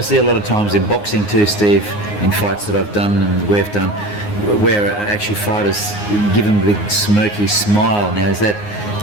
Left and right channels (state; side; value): late; right; 9.6 ms